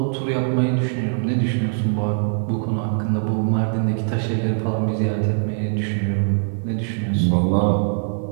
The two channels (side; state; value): left; silent; digital silence